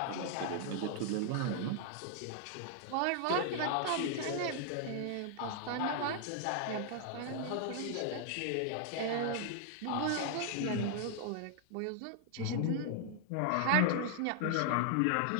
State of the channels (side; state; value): both; different; correlation 0.00